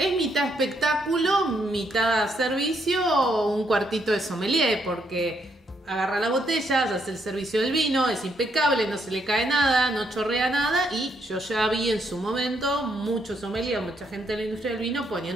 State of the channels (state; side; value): normal; both; correlation 0.75